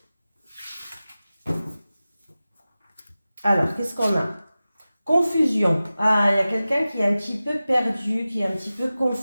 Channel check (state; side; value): inverted; both; correlation -0.96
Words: Alors, qu'est-ce qu'on a? Confusion. Ah, il y a quelqu'un qui est un petit peu perdu, qui est un petit peu